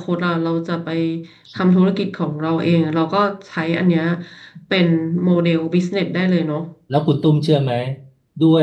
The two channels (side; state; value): both; identical; correlation 1.00